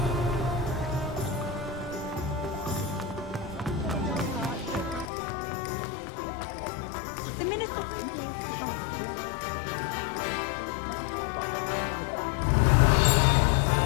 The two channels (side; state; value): right; drops out; at 5.1 s